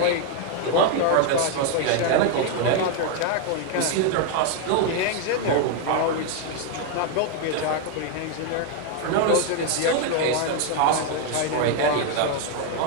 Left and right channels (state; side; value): different; both; correlation 0.01